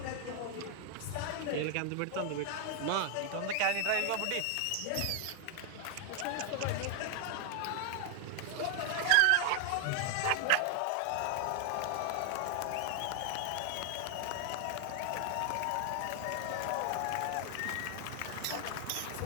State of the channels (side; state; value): both; different; correlation 0.00